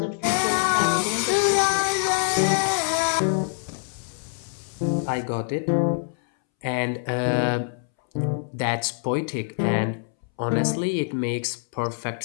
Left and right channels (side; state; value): right; silent; 62 dB below the other